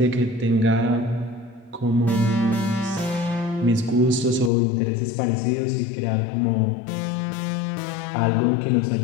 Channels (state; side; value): drops out; right; at 4.5 s